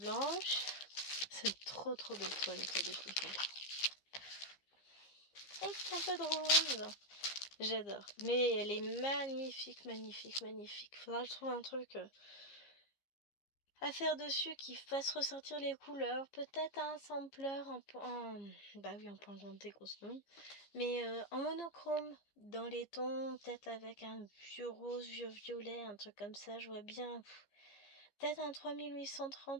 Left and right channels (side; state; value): right; late; 15 ms